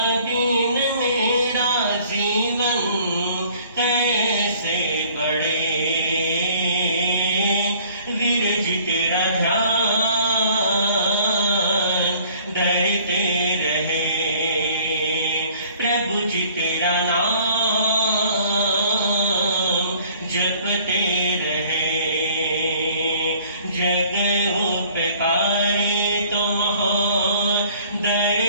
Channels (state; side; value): inverted; both; correlation -0.54